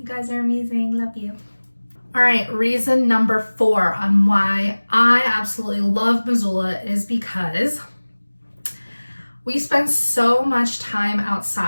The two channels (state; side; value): inverted; both; correlation -1.00